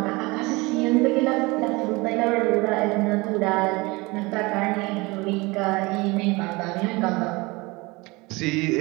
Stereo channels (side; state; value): left; quieter; 24.1 dB